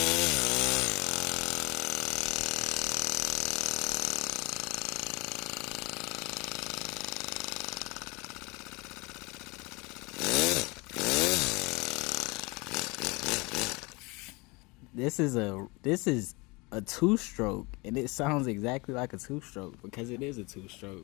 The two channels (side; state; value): right; quieter; 26.3 dB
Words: This is a two-stroke, and it sounds exactly like a two-stroke because it is a